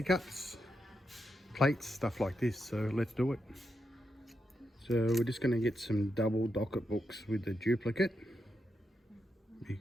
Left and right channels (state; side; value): normal; both; correlation 0.84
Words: cups, plates, stuff like this. So let's do it. So we're just going to get some double docket books with the duplicate,